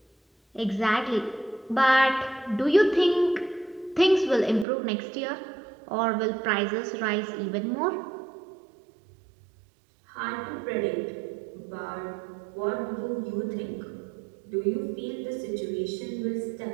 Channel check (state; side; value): drops out; left; at 4.7 s